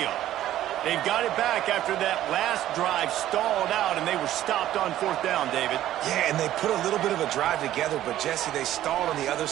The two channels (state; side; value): quieter; left; 13.1 dB